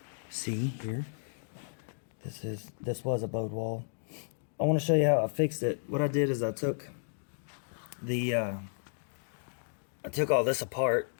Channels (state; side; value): silent; right; digital silence